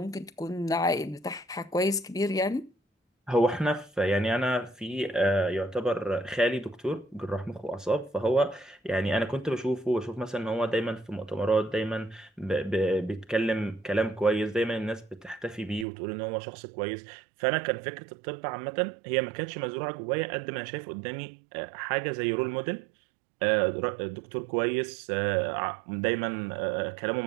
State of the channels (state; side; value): drops out; left; at 15.9 s